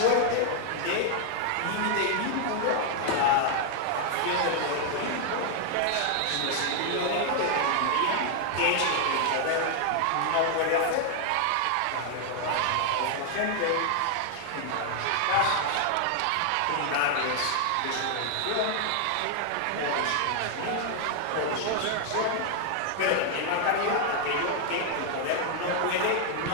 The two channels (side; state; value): both; different; correlation 0.00